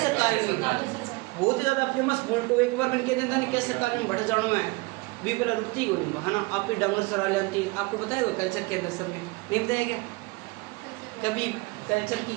काल में बहुत ही ज्यादा फेमस बुल्ट। एक बार मैंने कह देता नहीं कैसे काल में बढ़ जाना है भी पहले रुकती ही नहीं, है ना? आप भी डंगर चरा लेती। आपको बताया हुआ कल्चर के अंदर सब में नहीं बताया क्या कभी? कल्चर की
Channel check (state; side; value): quieter; left; 25.0 dB